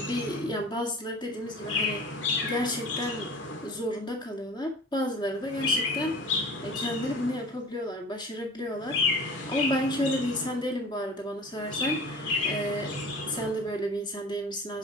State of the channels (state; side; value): normal; both; correlation 0.40